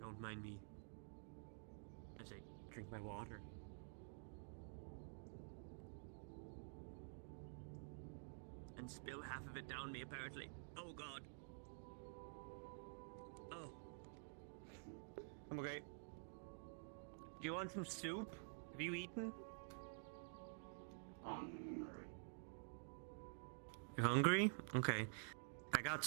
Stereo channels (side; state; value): left; silent; digital silence